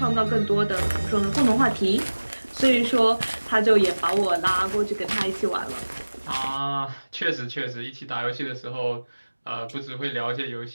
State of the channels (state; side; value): inverted; both; correlation -1.00